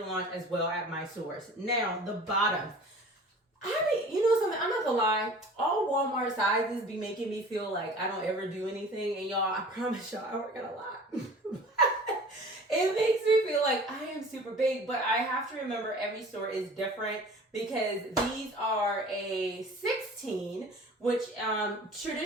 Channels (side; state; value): both; normal; correlation 0.43